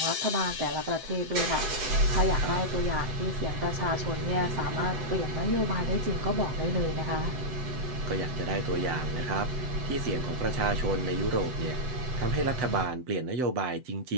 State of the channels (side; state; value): left; late; 7.8 ms